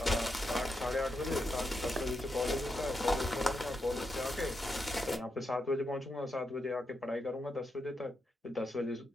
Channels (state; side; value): normal; both; correlation 0.84